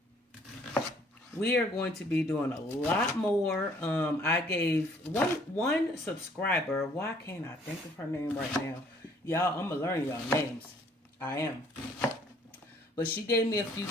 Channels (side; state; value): both; normal; correlation 0.60